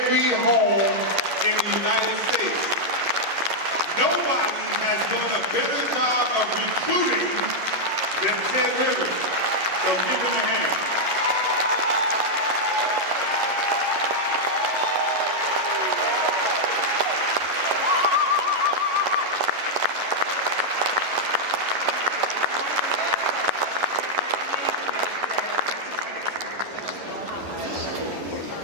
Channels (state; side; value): late; left; 11 ms